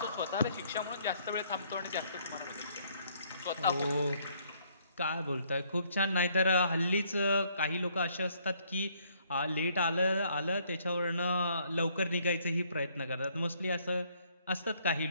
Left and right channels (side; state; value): both; inverted; correlation -0.66